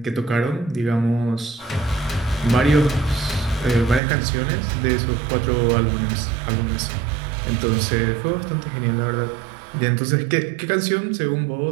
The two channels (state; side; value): drops out; left; at 4.0 s